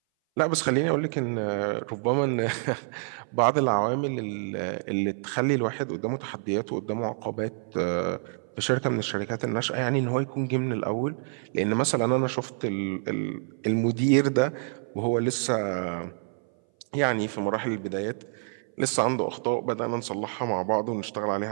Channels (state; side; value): silent; left; 58 dB below the other